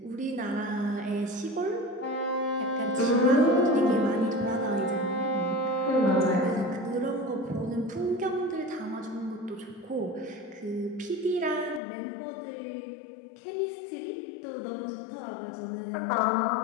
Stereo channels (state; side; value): drops out; right; at 11.8 s